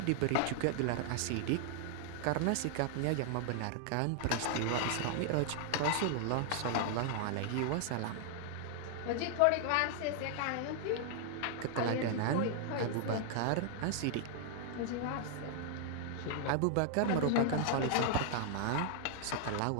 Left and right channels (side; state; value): both; different; correlation 0.00